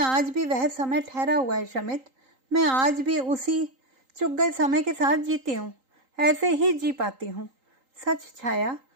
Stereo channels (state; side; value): late; left; 3.8 ms